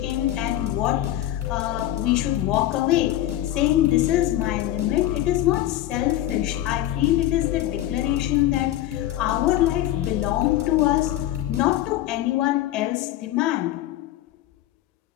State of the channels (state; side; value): quieter; right; 13.7 dB